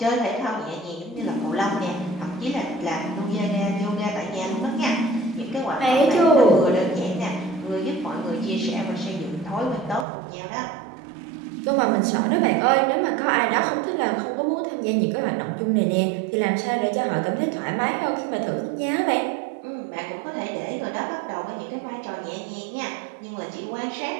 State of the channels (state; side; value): drops out; left; at 10.1 s